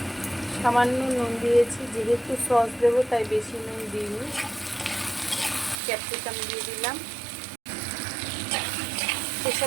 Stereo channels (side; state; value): left; drops out; at 5.8 s